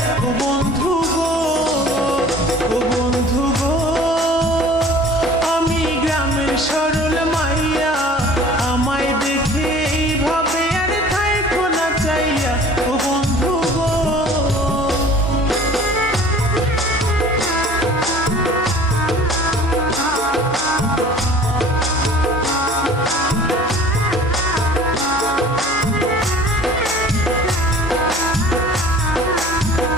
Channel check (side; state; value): both; normal; correlation 0.47